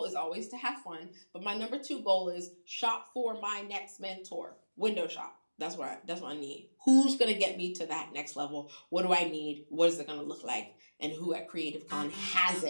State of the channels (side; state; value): both; inverted; correlation -1.00